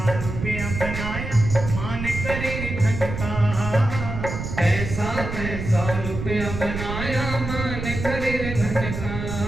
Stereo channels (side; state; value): right; noise; rumble, 6 dB below the sound